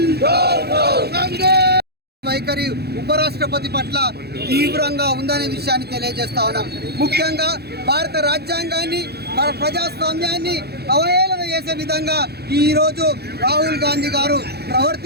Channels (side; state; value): left; late; 0.47 ms